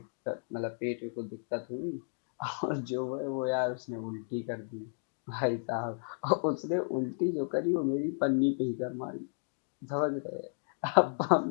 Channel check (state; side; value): silent; right; digital silence